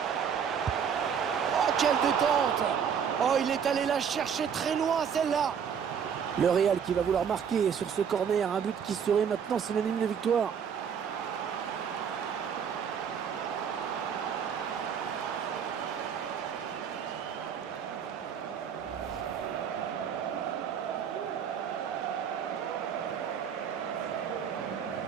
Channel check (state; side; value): quieter; left; 7.5 dB